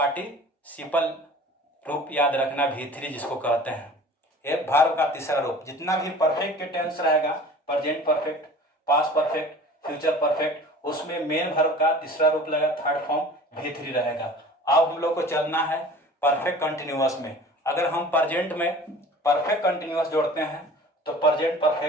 रूप, याद रखना भी3 जिसको कहते हैं, ये वर्ब का तीसरा रूप। जितना भी परफेक्ट के टेंस रहेगा, present perfect, past perfect, future perfect, उसमें मेन वर्ब का तीसरा रूप लगेगा, थर्ड फॉर्म भी3 रहेगा। अब हम लोग को चलना है परफेक्ट कंटिन्यूअस में। अगर हम प्रेजेंट में परफेक्ट कंटिन्यूअस जोड़ते हैं तो प्रेजेंट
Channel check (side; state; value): both; normal; correlation 0.43